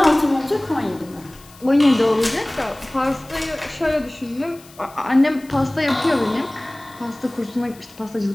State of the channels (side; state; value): left; noise; hiss, 24 dB below the sound